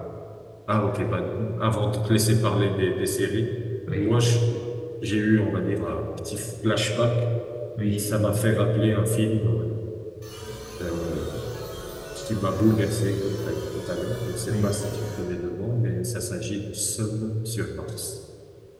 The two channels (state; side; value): identical; both; correlation 1.00